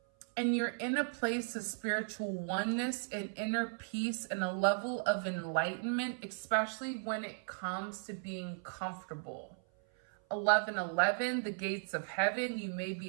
And you're in a place of spiritual oneness and inner peace and a level of enlightenment, especially when it comes to being comfortable. 1111, the gates of heaven. You may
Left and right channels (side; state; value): left; silent; 54 dB below the other